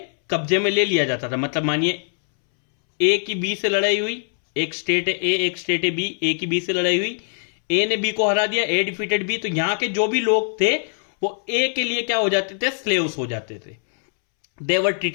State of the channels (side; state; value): right; silent; 64 dB below the other